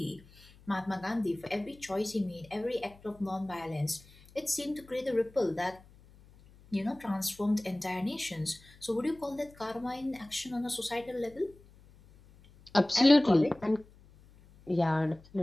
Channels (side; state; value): left; noise; hum, 25 dB below the sound